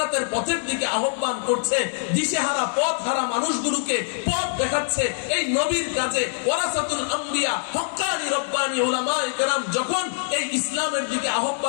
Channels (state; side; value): silent; right; digital silence